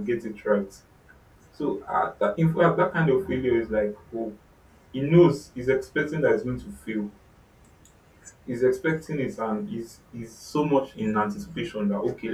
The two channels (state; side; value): identical; both; correlation 1.00